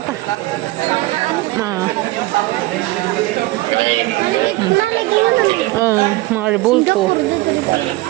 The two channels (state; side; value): quieter; left; 19.8 dB